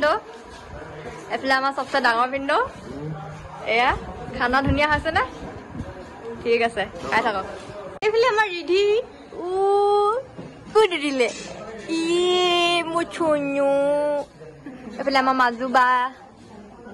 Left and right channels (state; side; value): identical; both; correlation 1.00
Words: এইফালে আমাৰ চবচে ডাঙৰ ভিনদেউ এয়া খানা ধুনীয়া হৈছে নে ঠিক আছে খাই থাকক এইফালে আমাৰ ৰিধি ক'ত দিলে মোৰ চুনু এইফালে আমাৰ মাজু বা